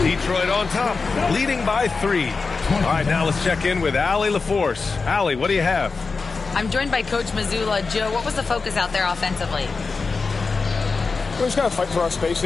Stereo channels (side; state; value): right; quieter; 4.4 dB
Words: Detroit on top, leading by 3. All right, now let's check in with Allie LaForce. Allie, what do you have? I'm joined by Coach Mazzulla. Joe, what was the focus out there offensively? We just got to fight for our